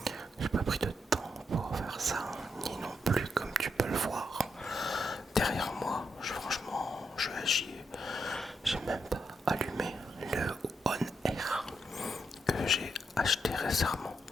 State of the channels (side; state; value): both; normal; correlation 0.81